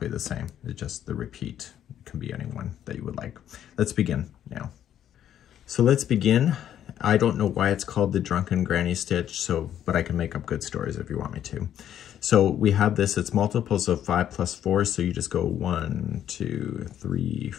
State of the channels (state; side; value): quieter; right; 10.5 dB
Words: the same. It's just the repeat. Can be anyone that you would like. Let's begin now. So let's begin. I don't know why it's called the Drunken Granny Stitch, but I can make up good stories if you want me to. So we have this, it's multiples of 5 plus 4, so you just go 1, 2, 3,